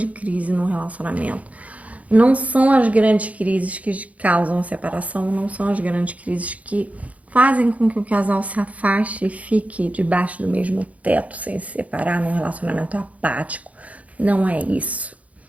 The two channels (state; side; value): late; left; 0.068 ms